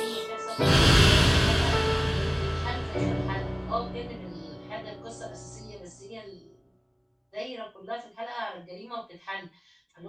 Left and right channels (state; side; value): identical; both; correlation 1.00